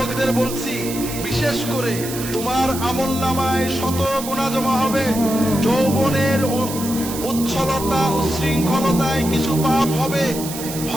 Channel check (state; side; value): noise; right; hiss, 9 dB below the sound